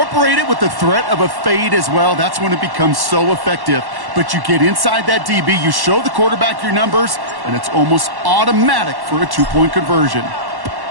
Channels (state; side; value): late; left; 1.1 ms